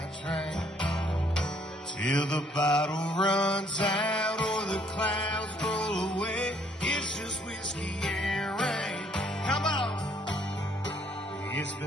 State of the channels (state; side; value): normal; both; correlation 0.65